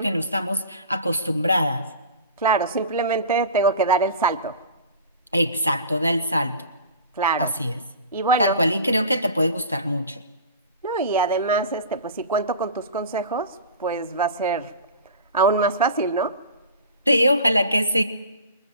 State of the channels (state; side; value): inverted; both; correlation -0.38